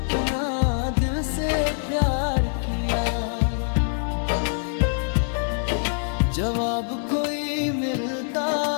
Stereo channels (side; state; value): right; silent; 59 dB below the other